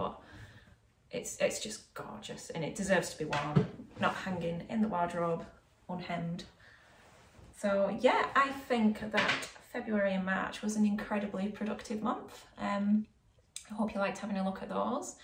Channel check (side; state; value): both; identical; correlation 1.00